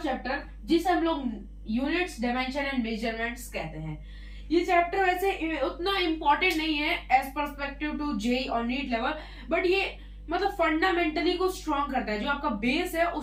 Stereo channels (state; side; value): identical; both; correlation 1.00